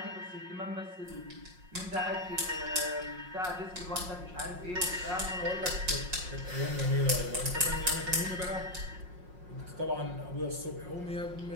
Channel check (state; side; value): late; left; 5.5 ms